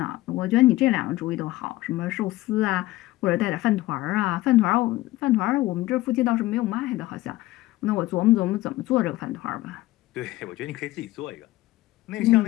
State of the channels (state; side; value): quieter; right; 17.3 dB